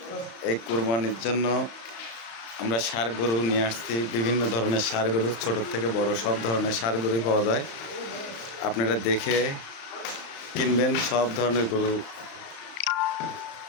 এই কুরবানির জন্য আমরা ষাঁড় গরু নিয়ে আসছি। বিভিন্ন ধরনের ষাঁড় গরু, ছোট থেকে বড় সব ধরনের ষাঁড় গরুই পাওয়া যায়। আপনারা দেখে কিনবেন। সব ধরনের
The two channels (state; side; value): late; right; 35 ms